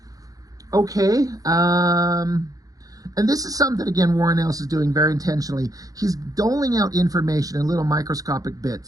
Okay. And this is something that, again, Warren Ellis is doing very intentionally. He's doling out information in little microscopic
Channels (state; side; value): late; left; 0.17 ms